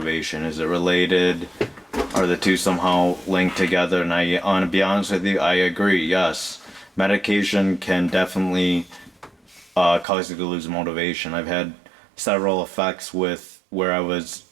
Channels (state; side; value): drops out; left; at 10.1 s